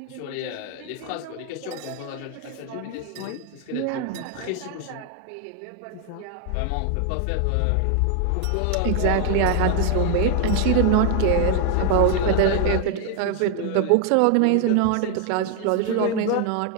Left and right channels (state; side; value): different; both; correlation 0.01